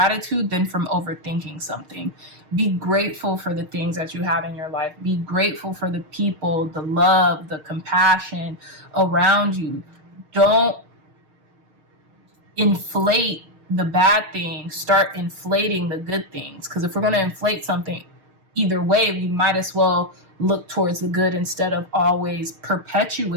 than from overthinking something. Be grateful for the things that you have in your life. Be grateful for the people, the love, the compassion around you. Don't inflate the bad things. Start inflating the good things. Because if we're going to inflate something, either way, we might as well look towards the good instead of always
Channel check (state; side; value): late; left; 6.5 ms